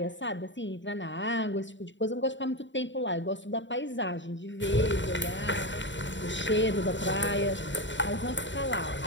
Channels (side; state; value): right; late; 0.54 ms